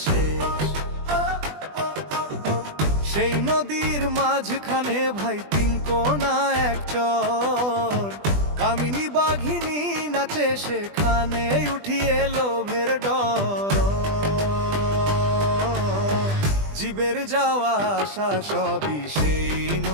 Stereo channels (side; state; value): left; late; 20 ms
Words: শেষ। সেই নদীর মাঝখানে ভাই 3 কোনা এক চর, কামিনী বাঘিনী নাচে সেখানে উঠিয়ে লোভের ডর। জীবের যাওয়া আসা সবই সেই